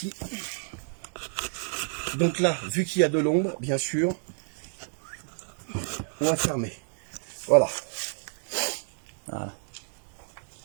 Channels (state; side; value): silent; left; 57 dB below the other